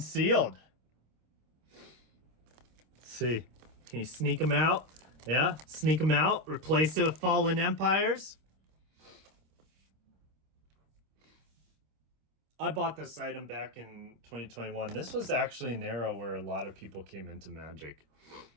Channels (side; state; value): left; late; 26 ms